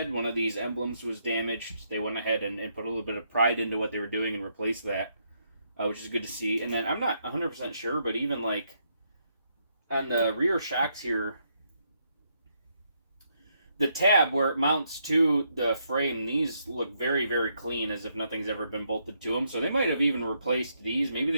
one of these emblems was damaged. They went ahead and put a little bit of pride into what they were doing and replaced that, which is good to see. And then I'm not 100% sure, but even like on the rear shocks here, the tab where it mounts to the frame, these look very, very clean, as if nothing's ever been bolted to them. So they might have even replaced these. Maybe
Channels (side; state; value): both; inverted; correlation -0.76